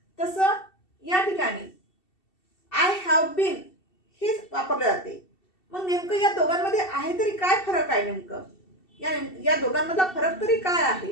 तसं या ठिकाणी आय हॅव बीन हेच वापरले जाते. मग नेमकं या दोघांमध्ये आहे तरी काय फरक आहे? नेमकं या दोघांमधला फरक तरी काय आहे,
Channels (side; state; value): right; late; 2.7 ms